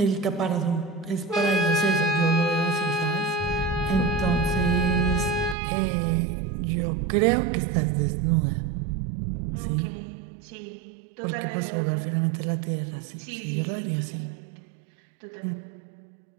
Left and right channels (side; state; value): left; drops out; at 5.6 s